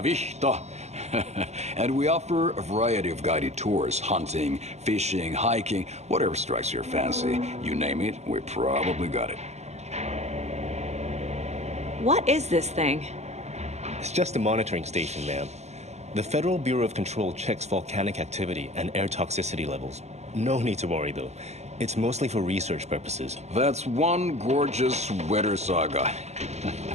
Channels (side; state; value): left; late; 0.32 ms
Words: vihta. And we offer a variety of guided tours, hunting, fishing, hiking, whatever strikes your fancy. You name it, we probably got it. What is this thing? It's just a monitoring station, ma'am. The Federal Bureau of Control checks volcanic activity and air toxicity levels. No need to worry, though. It's mostly for research purposes. That's one gorgeous sweater, Saga.